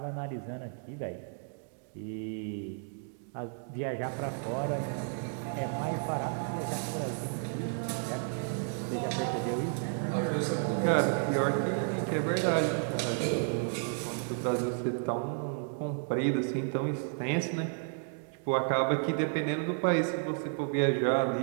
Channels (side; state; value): left; silent; 56 dB below the other